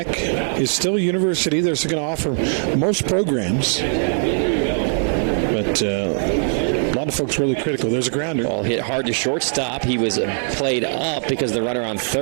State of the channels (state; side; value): silent; left; 65 dB below the other